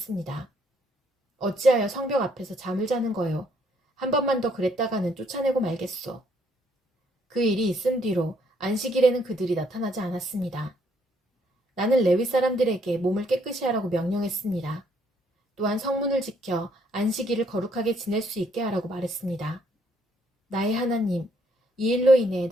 어찌하여 성벽 앞에서 잠을 자는 거요? 한 번만 더 그랬다가는 쫓아내고 말겠소. 그 일이 있은 뒤로 안식일에는 그들이 나타나지 않았습니다. 나는 레위 사람들에게 몸을 깨끗이 하라고 명령했습니다. 또한 성문을 지켜 안식일을 거룩하게 지낼 수 있게 하라고 말했습니다. 나의 하나님, 이 일로 인해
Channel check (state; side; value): normal; both; correlation 0.69